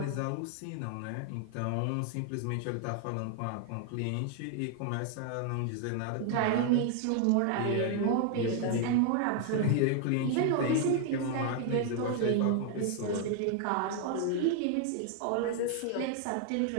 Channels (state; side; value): different; both; correlation 0.00